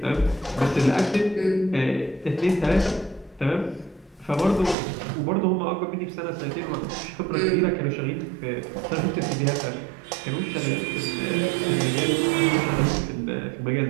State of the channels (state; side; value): drops out; left; at 4.8 s